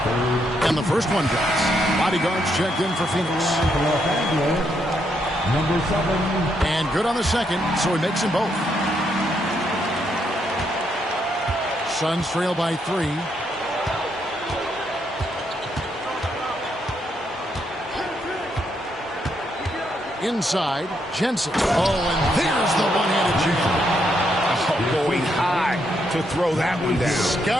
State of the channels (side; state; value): both; normal; correlation 0.77